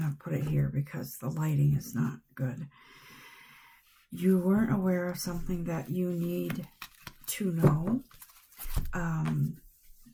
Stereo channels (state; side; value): identical; both; correlation 1.00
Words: to put it here because the lighting is not good. You weren't aware of something that you need to know.